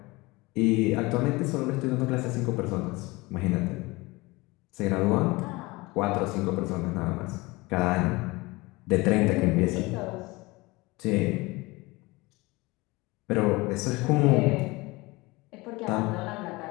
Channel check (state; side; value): quieter; right; 22.9 dB